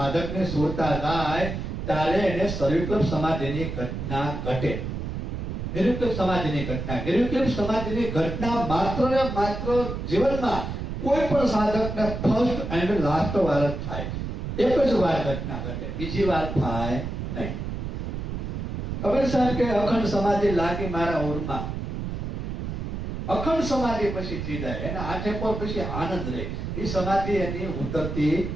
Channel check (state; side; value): noise; right; rumble, 5 dB below the sound